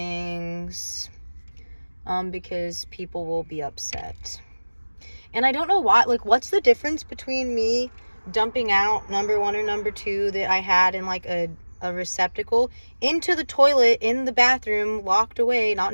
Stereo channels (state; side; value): inverted; both; correlation -1.00